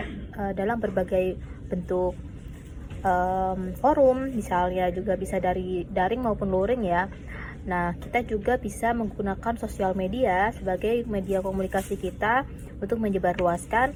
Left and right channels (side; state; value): both; identical; correlation 1.00